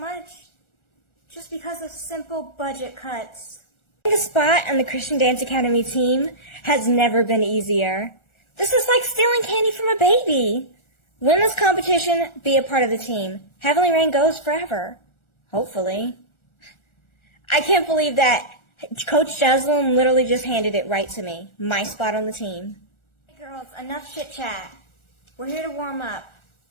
just because of simple budget cuts. Getting a spot on the Christian Dance Academy team has never been easier. This is like stealing candy from a baby. Win this competition, be a part of the team. Heavenly Rain goes forever. Hopefully. I can't believe that Coach Jeslyn literally just handed it right to me. My spot on the team. Hey girls, enough chit chat. We're here to warm up.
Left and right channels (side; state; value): right; late; 1.4 ms